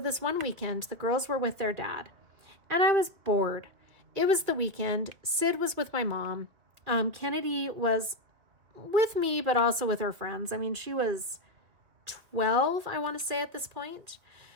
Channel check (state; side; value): late; left; 2.6 ms